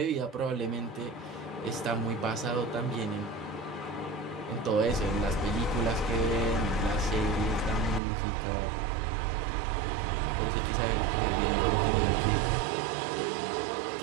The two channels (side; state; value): left; drops out; at 8.0 s